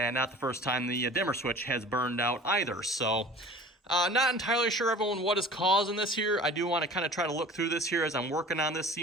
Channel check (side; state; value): both; normal; correlation 0.43